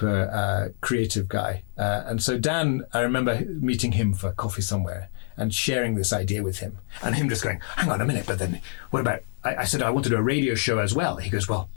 creative guy. And so Dan, I remember meeting him for coffee somewhere and sharing this idea with him, and him just going, "Hang on a minute, but then what about?" I said, "I want to do a radio show as well." He goes, "Well,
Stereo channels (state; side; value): silent; right; 61 dB below the other